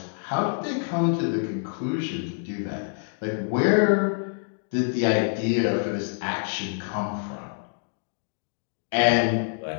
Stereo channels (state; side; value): silent; right; digital silence